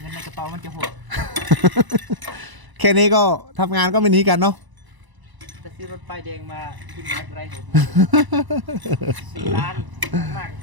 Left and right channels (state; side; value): late; left; 1.0 ms